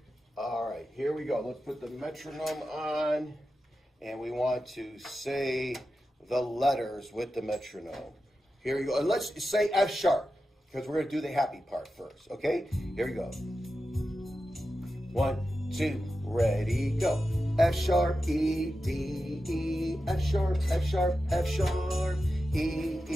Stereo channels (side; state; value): both; normal; correlation 0.91